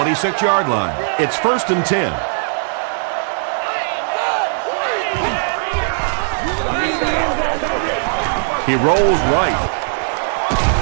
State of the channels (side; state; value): left; silent; digital silence